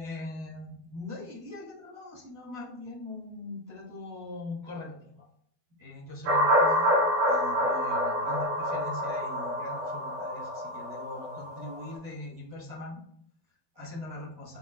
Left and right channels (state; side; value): late; left; 12 ms